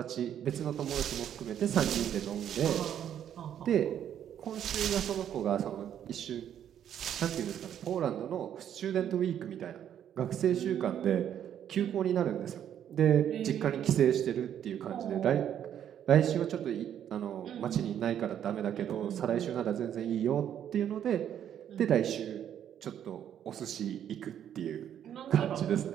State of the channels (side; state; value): left; quieter; 9.8 dB